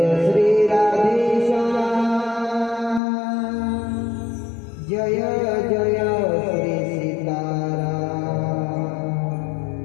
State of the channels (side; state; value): right; drops out; at 3.0 s